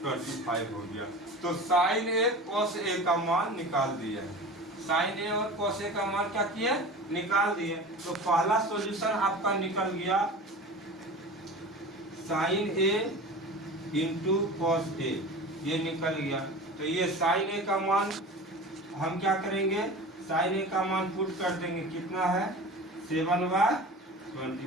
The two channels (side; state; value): both; normal; correlation 0.35